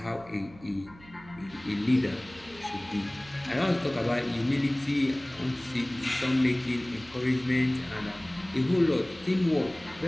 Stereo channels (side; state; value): right; noise; hum, 22 dB below the sound